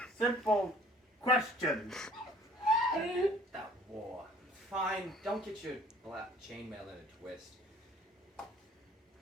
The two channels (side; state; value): both; normal; correlation 0.54